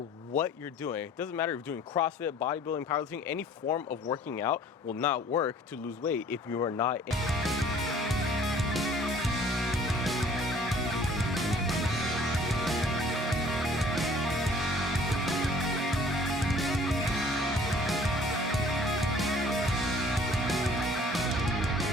you're doing. It doesn't matter if you're doing CrossFit, bodybuilding, powerlifting, any form of working out will not work to lose weight if you are not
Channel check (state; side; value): normal; both; correlation 0.53